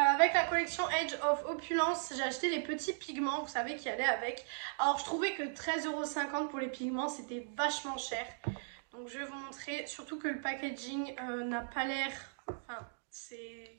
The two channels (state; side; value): silent; left; digital silence